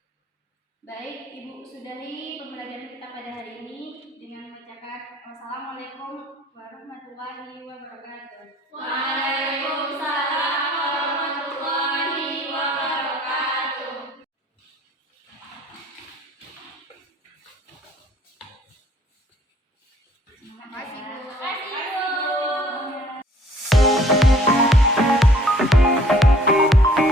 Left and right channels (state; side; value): normal; both; correlation 0.57